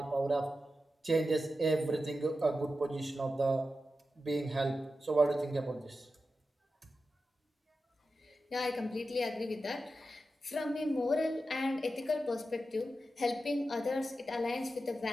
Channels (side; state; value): both; normal; correlation 0.91